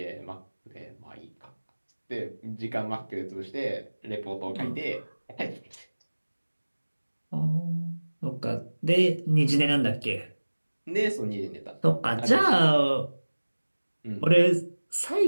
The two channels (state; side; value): inverted; both; correlation -1.00